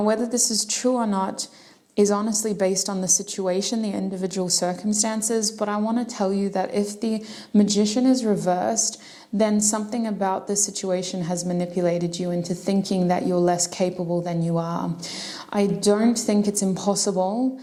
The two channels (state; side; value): identical; both; correlation 1.00